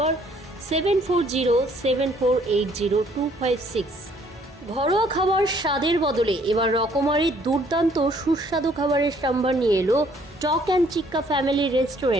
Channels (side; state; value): both; normal; correlation 0.62